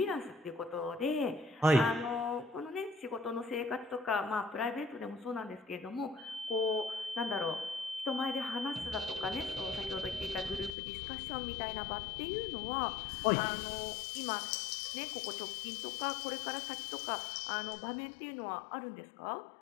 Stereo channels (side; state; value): right; drops out; at 10.7 s